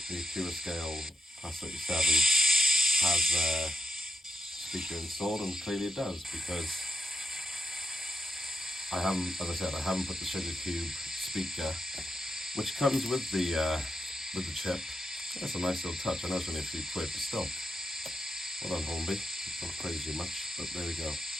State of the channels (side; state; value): both; normal; correlation 0.85